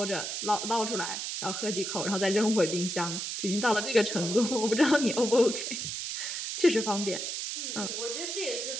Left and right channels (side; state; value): right; noise; hiss, 4 dB below the sound